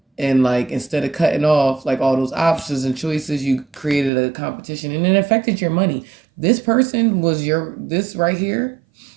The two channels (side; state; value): left; drops out; at 4.1 s